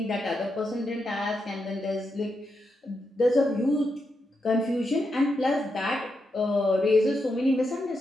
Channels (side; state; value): both; normal; correlation 0.84